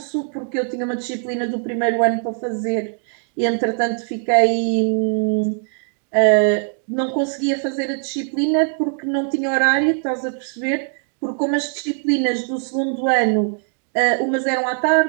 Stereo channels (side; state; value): left; silent; 56 dB below the other